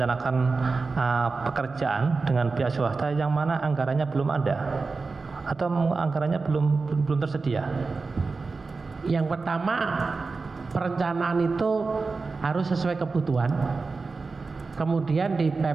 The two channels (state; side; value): quieter; left; 4.1 dB